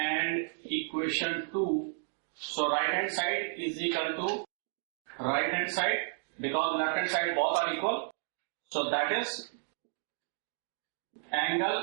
equation 2. So right hand side is equal to right hand side, because left hand side both are equal. So that is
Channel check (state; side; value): silent; left; digital silence